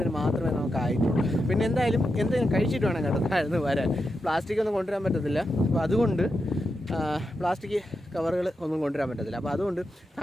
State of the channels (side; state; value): both; normal; correlation 0.87